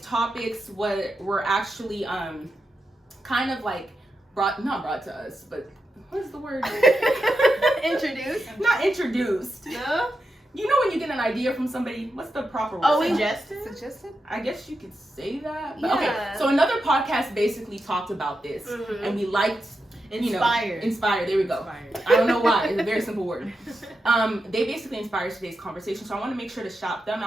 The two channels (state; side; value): normal; both; correlation 0.87